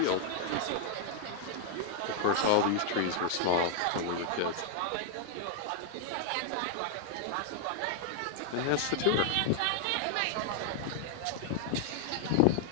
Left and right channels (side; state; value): both; different; correlation 0.00